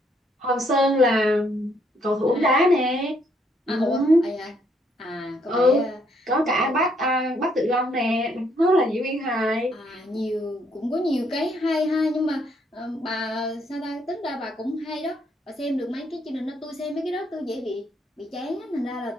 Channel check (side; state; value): both; normal; correlation 0.70